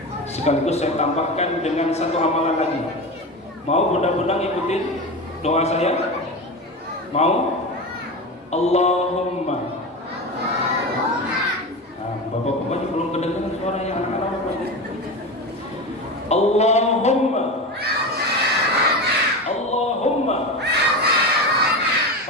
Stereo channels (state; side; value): normal; both; correlation 0.23